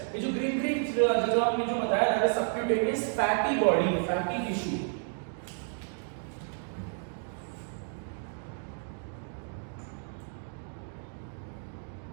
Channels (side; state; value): left; silent; 56 dB below the other